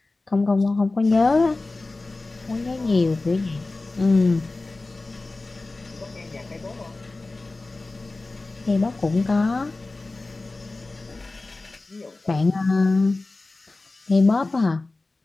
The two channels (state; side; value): quieter; right; 3.3 dB